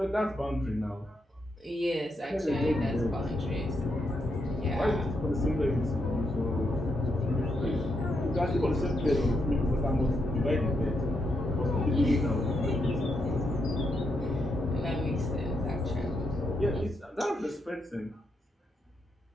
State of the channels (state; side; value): normal; both; correlation 0.81